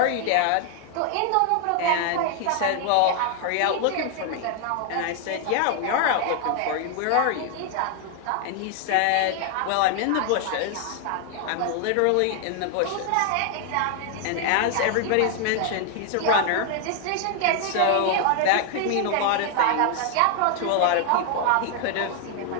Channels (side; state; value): both; different; correlation 0.00